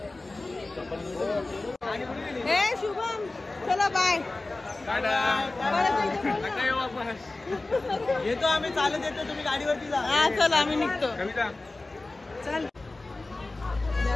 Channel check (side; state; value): right; quieter; 3.1 dB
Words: शुभम चला बाय. येतो आम्ही चालत येतो तुम्ही गाडीवरती जा. हा चला आम्ही निघतो. चल